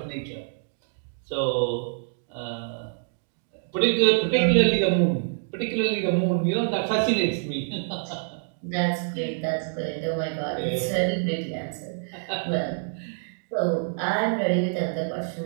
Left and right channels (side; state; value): left; silent; digital silence